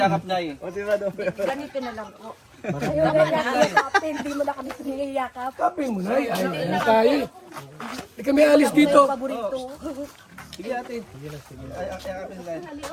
nay. Ganito na lang po. Hindi mo na kami siniyakap. Kapin mo, Nay. Ay tayo. Hindi kami alis dito. Sige ate. Ay, yakapin na.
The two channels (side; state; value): both; identical; correlation 1.00